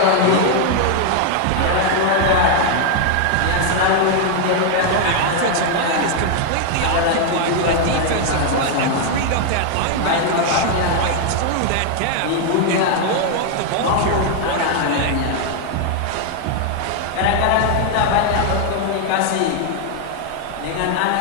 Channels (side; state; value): both; different; correlation 0.00